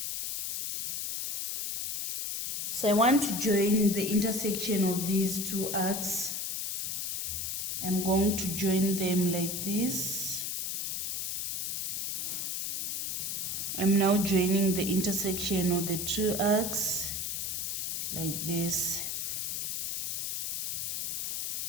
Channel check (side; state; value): left; noise; hiss, 1 dB below the sound